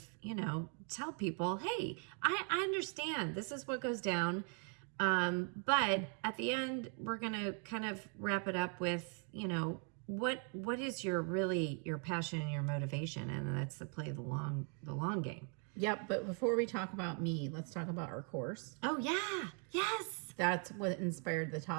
tell people, hey, I understand this is what goes down. But at the end, we're going to kind of wrap it up with, what is your passion and your motivation? And that's to play the long game. Yep. But before we talk about me, let's talk about our course. Oh yeah. Yes. That's what inspired the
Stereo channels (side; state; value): left; quieter; 39.4 dB